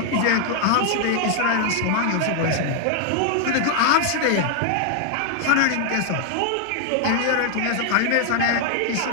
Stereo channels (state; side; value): different; both; correlation 0.00